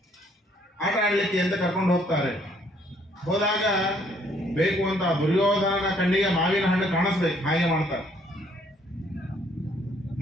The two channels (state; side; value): normal; both; correlation 0.65